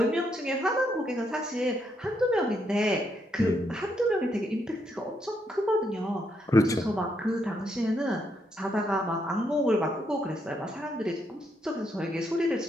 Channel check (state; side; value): normal; both; correlation 0.77